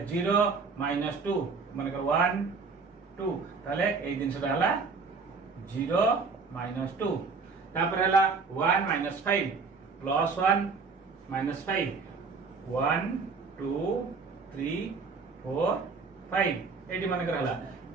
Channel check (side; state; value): left; quieter; 4.7 dB